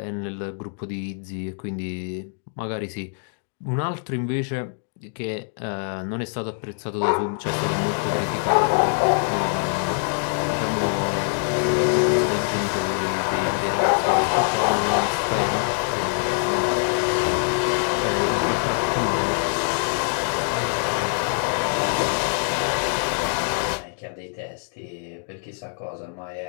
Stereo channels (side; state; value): right; silent; digital silence